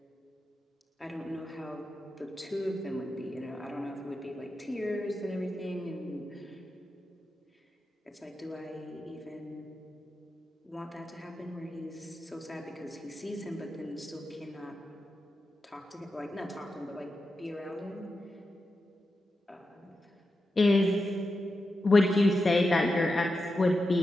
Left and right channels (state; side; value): normal; both; correlation 0.89